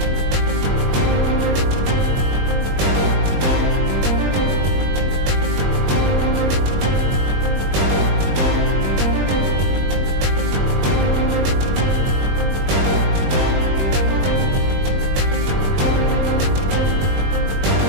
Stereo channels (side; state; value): left; late; 21 ms